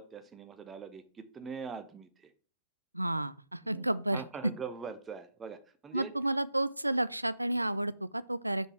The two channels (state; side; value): inverted; both; correlation -0.87